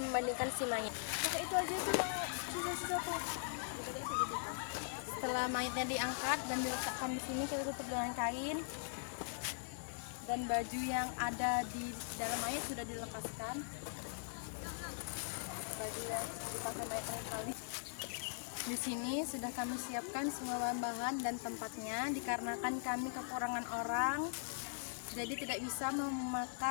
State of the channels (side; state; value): right; silent; digital silence